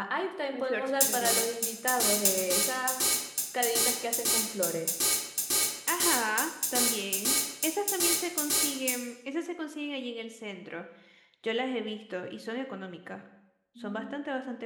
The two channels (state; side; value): identical; both; correlation 1.00